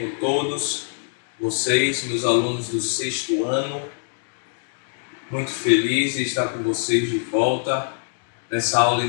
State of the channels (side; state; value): right; silent; digital silence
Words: todos? Vocês, meus alunos do 6º ano, muito feliz de estar com vocês de volta nessa aula